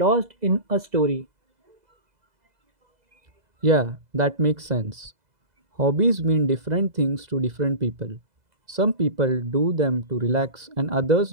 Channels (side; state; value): left; late; 2.0 ms